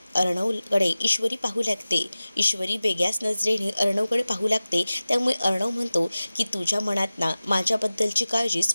अर्णवकडे ईश्वरी पाहू लागते. ईश्वरी वेगळ्याच नजरेने अर्णवकडे पाहू लागते. त्यामुळे अर्णव म्हणतो की तुझ्या मनात ना माझ्याबद्दलची काळजी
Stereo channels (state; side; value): inverted; both; correlation -0.97